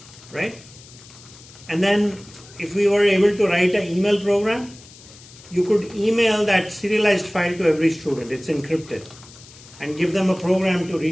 right? And then if we were able to write an email program, you could email that serialized file to every student. It's encrypted. And give them a program to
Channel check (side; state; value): left; noise; hiss, 21 dB below the sound